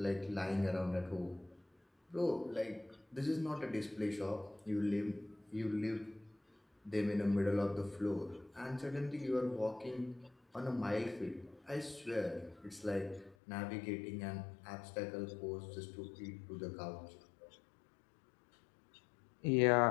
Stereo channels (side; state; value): right; drops out; at 13.4 s